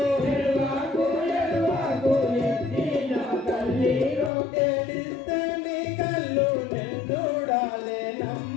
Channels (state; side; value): drops out; right; at 4.3 s